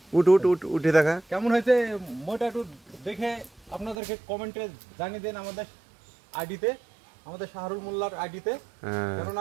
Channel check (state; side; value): drops out; left; at 4.0 s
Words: উঠে দেখা কেমন হয়েছে মইটা একটু দেখে আপনাদেরকে কমেন্টে জানিয়ে দেন আমাদের আইডিতে, আমাদের শাহরুল মোল্লার আইডিতে।